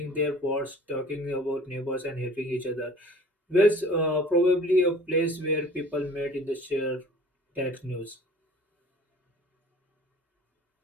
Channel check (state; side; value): normal; both; correlation 0.47